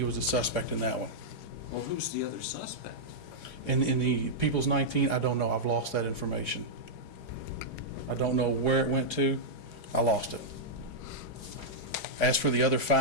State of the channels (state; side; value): late; right; 4.8 ms